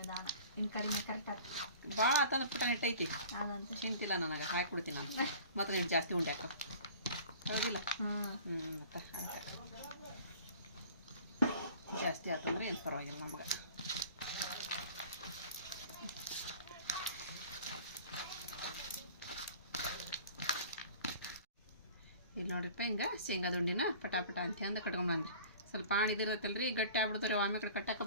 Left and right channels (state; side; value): inverted; both; correlation -0.45